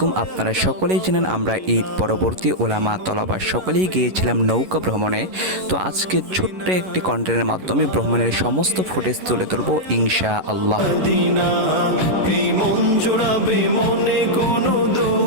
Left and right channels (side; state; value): left; late; 11 ms